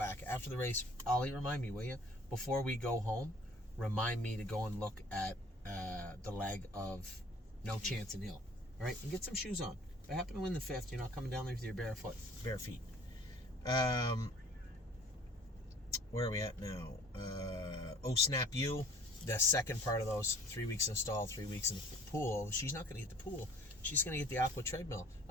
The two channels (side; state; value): both; normal; correlation 0.51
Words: After the race, Ollie, remind me, will you? Before we go home, remind me to go and look at the lag of No Chance in Hill. All right? And get some shoes on. If I happen to win the 5th, you're not coming down there with your bare feet. Where are we at now? Oh Snap You. The second part of those 3 weeks in stall, 3 weeks in the pool. She's not going to get the pool. She's going to get the aqua treadmill.